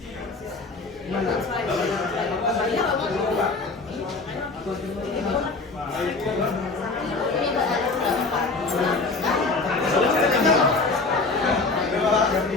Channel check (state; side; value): quieter; right; 3.7 dB